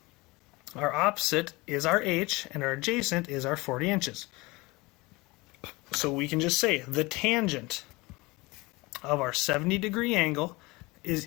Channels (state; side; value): quieter; right; 23.3 dB